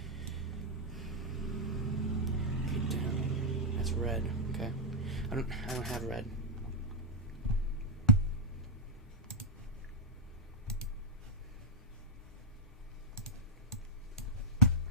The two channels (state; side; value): normal; both; correlation -0.04